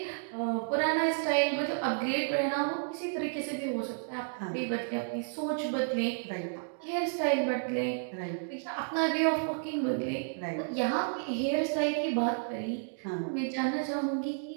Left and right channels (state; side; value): silent; left; digital silence